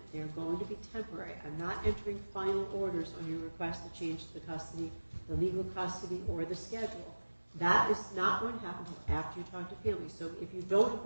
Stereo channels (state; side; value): inverted; both; correlation -1.00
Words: They are going to be temporary. I'm not entering final orders on your request to change the custody, the legal custody, or the schedule. That is not going to happen until after you talk to families. So if you don't